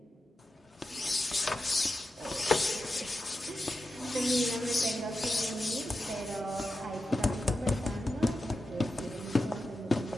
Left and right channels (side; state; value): both; normal; correlation 0.90